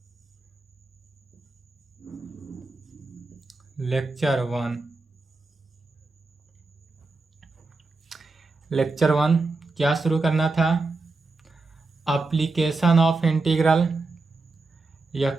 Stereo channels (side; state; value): left; quieter; 3.6 dB